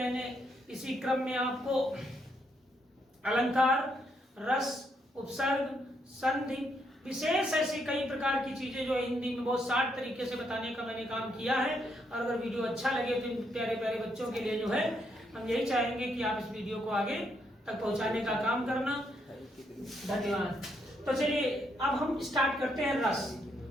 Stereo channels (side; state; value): both; normal; correlation 0.76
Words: इसी क्रम में आपको अलंकार, रस, उपसर्ग, संधि, विशेष ऐसी कई प्रकार की चीजें जो हिंदी में बहुत शार्ट तरीके से बताने का मैंने काम किया है। और अगर वीडियो अच्छा लगे तो इन प्यारे प्यारे बच्चों के लिए जो है हम यही चाहेंगे कि आप इस वीडियो को आगे तक पहुंचाने का काम करना। धन्यवाद। तो चलिए, अब हम स्टार्ट करते हैं रस।